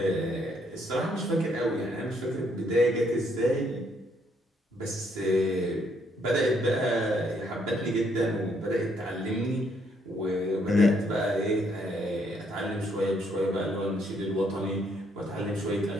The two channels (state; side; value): normal; both; correlation 0.71